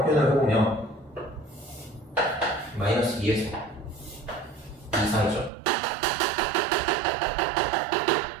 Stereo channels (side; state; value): left; drops out; at 5.5 s